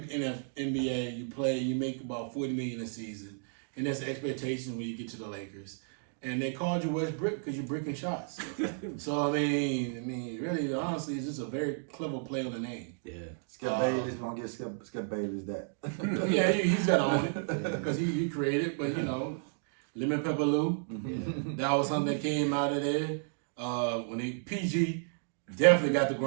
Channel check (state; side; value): silent; left; digital silence